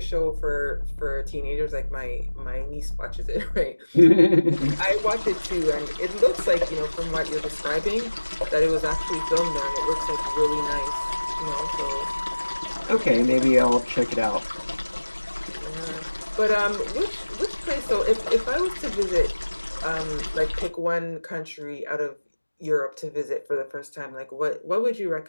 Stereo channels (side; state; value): both; inverted; correlation -1.00